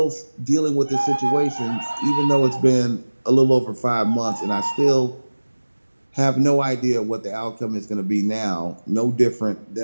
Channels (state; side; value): inverted; both; correlation -1.00